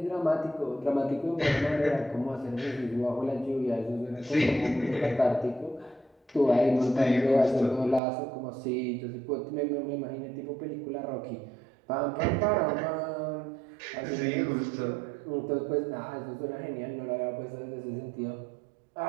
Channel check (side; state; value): left; drops out; at 8.0 s